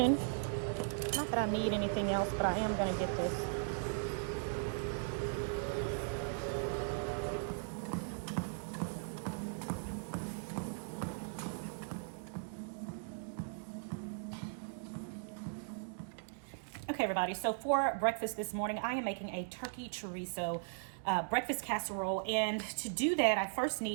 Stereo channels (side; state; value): left; silent; digital silence